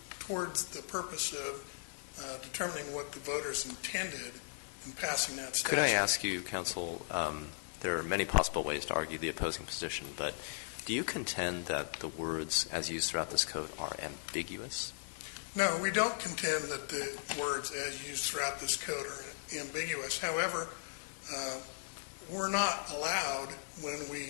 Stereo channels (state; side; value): silent; right; 53 dB below the other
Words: towards the purpose of determining what the voters intended in passing that statute. Could I ask you, counsel, there are many possible ways to argue the opposing position, but do you contend that the words as used throughout this code are ambiguous? No, we don't contend that the words as used throughout this code are ambiguous. However, we're not allowed, when